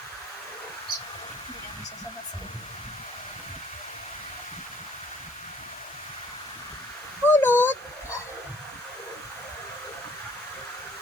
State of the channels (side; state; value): both; normal; correlation 0.60